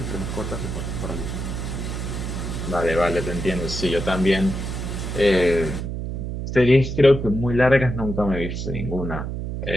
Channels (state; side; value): noise; right; hum, 4 dB below the sound